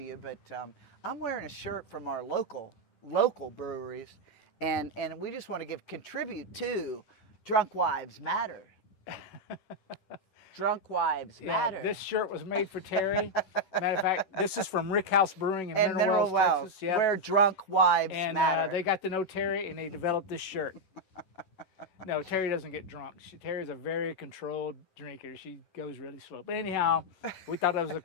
but I'm wearing a shirt from our local breweries, and we just want to contribute to Drunk Wives Matter. Drunk Wives Matter. Yeah, this shirt was made for Terry. Matter of fact, this is from Rick House Brewing in Mineral Wells, Texas. Yep. Where drunk wives matter. And they got to know Terry, and they developed this shirt. No, Terry doesn't get drunk. Terry's a very controlled drinker. She goes really slow. But anyhow, we thought that was a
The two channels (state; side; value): late; right; 11 ms